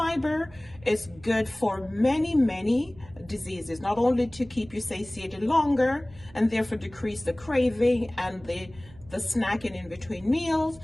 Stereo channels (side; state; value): right; noise; hum, 22 dB below the sound